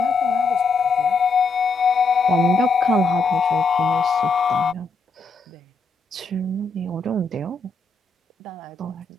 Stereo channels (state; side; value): quieter; right; 3.9 dB